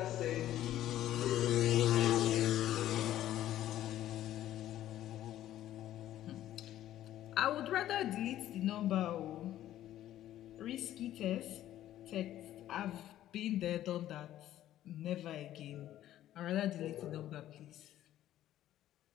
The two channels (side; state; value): right; quieter; 12.9 dB